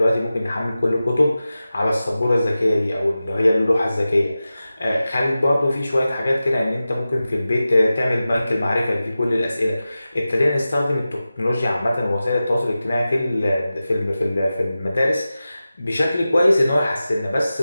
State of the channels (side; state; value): both; inverted; correlation -0.94